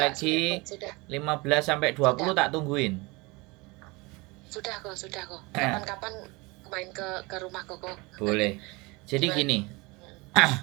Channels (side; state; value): left; quieter; 25.2 dB